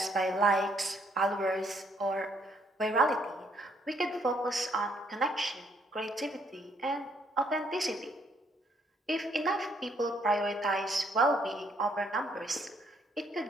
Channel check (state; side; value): normal; both; correlation 0.69